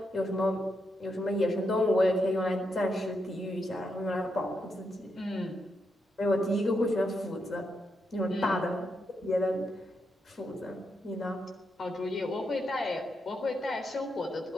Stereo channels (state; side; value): normal; both; correlation 0.82